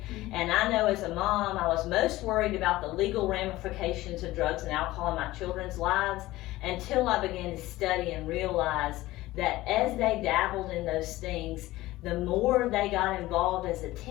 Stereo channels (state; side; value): quieter; right; 17.5 dB